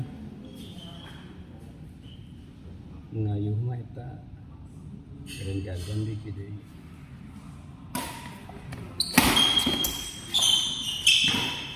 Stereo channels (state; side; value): identical; both; correlation 1.00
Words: Ngayu mah eta Grand Jam-jam di hiji deui.